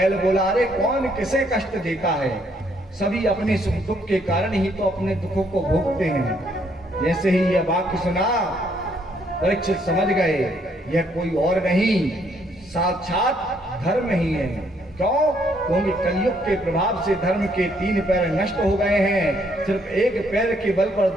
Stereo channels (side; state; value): both; normal; correlation 0.69